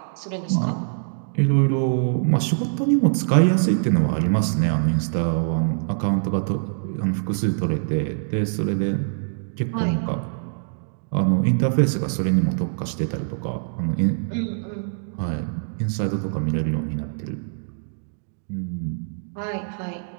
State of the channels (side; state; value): left; silent; digital silence